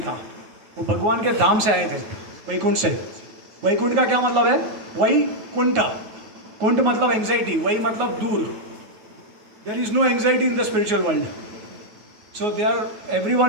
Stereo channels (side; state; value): left; late; 9.4 ms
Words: था, वो भगवान के धाम से आए थे, वैकुंठ से। वैकुंठ का क्या मतलब है, वही कुंठ, कुंठ मतलब एंग्जाइटी, वही मतलब दूर। There is no anxiety in the spiritual world, so they are